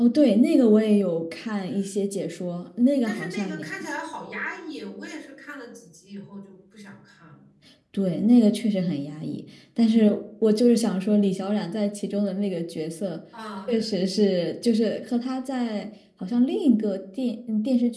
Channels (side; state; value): both; identical; correlation 1.00